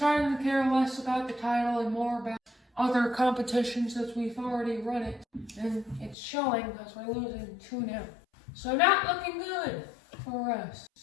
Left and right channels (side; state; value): right; drops out; at 6.2 s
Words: to care less about the title and more about other competitions as we've already run it. And it's showing because we're losing 2-0. So not looking good for us.